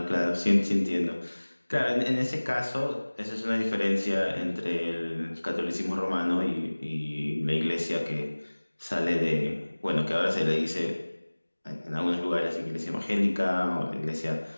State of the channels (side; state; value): both; inverted; correlation -1.00